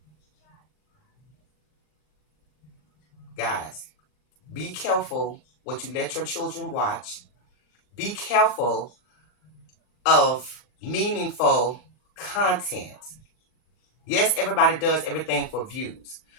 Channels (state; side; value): late; right; 40 ms